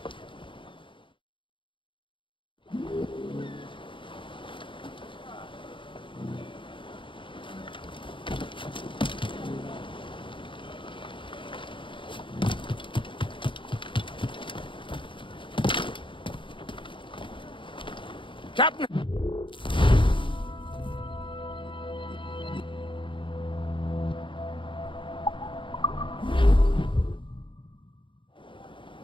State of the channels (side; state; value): right; late; 0.24 ms